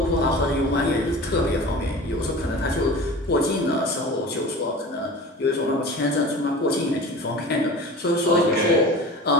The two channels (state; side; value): normal; both; correlation 0.37